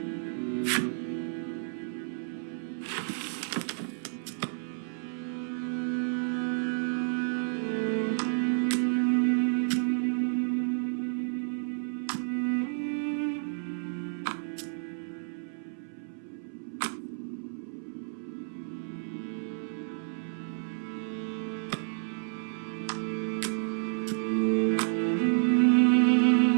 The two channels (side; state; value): left; silent; 57 dB below the other